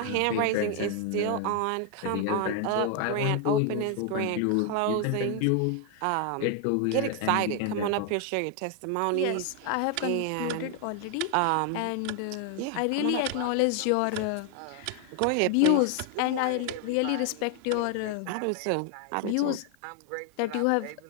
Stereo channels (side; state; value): both; different; correlation 0.00